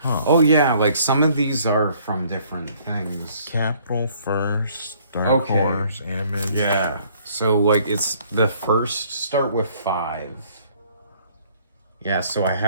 Huh. Oh yeah, like some of these are from different things. Capital First, Dark Horse, Image. Yeah. So like it's the first start with 5. Yeah, so I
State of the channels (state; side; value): inverted; both; correlation -0.60